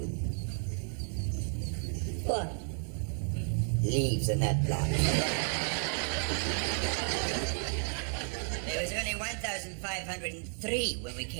What? Leaves in that block. There was only 1,503 when we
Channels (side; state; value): left; silent; 56 dB below the other